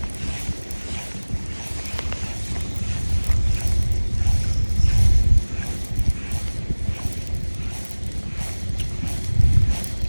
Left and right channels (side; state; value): both; inverted; correlation -1.00